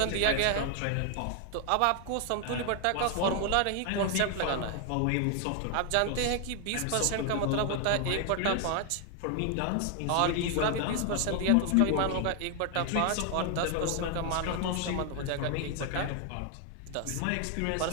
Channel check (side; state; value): both; different; correlation 0.00